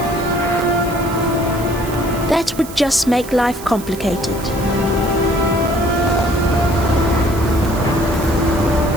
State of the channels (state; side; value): noise; right; hiss, 15 dB below the sound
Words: That would just make life complicated.